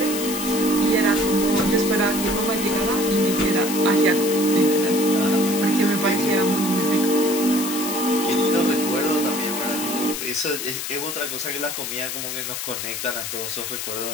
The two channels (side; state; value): left; noise; hiss, 5 dB below the sound